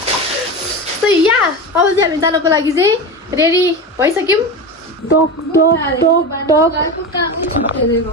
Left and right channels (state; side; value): normal; both; correlation 0.23